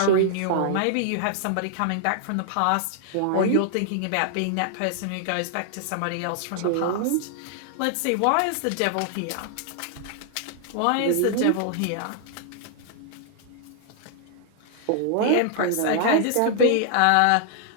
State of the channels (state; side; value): different; both; correlation 0.00